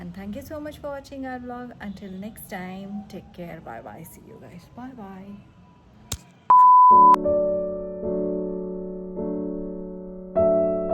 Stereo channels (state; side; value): identical; both; correlation 1.00